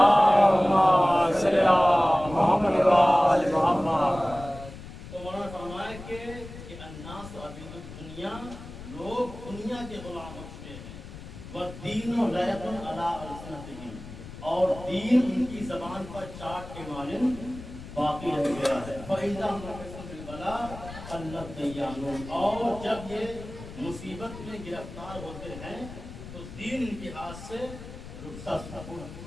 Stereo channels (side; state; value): left; noise; rumble, 14 dB below the sound